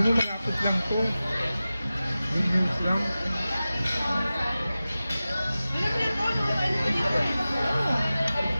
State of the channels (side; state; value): both; inverted; correlation -0.96